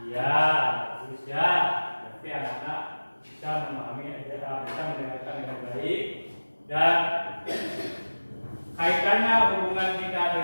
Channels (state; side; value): inverted; both; correlation -1.00